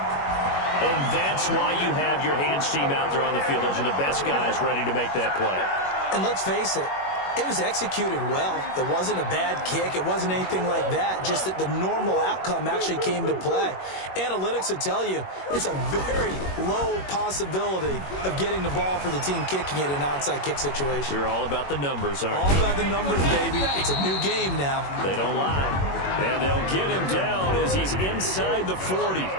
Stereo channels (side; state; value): right; late; 21 ms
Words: And that's why you have your hands team out there on the field. Those are the best guys ready to make that play. And let's face it, it was executed well. It wasn't a bad kick. It wasn't anything like that. Just that the normal outcome actually came to play. Analytics will tell you it's a very low possibility of getting the ball for the team kicking it in an onside kick situation. You're all about the numbers, aren't you? All about the numbers, baby. It's a new game now. They don't lie. And they'll get him down as he's inside the 40.